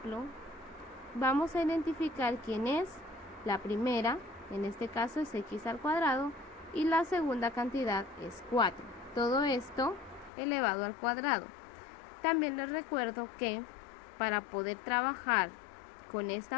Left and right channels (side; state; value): right; drops out; at 10.3 s